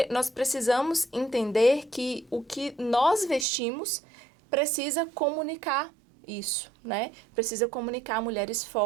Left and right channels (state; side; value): drops out; left; at 3.5 s